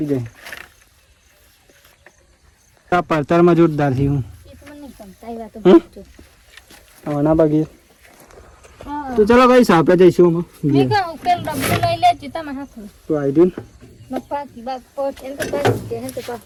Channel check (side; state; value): both; identical; correlation 1.00